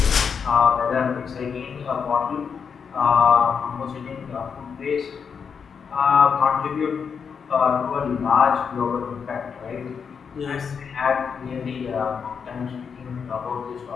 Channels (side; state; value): right; quieter; 6.4 dB